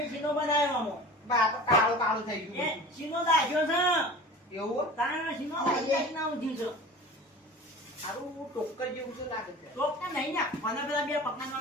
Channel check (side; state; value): both; normal; correlation 0.38